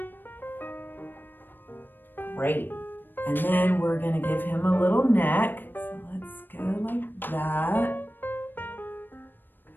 Great. And then we're gonna give him a little neck. So let's go like that.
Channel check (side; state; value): right; late; 0.094 ms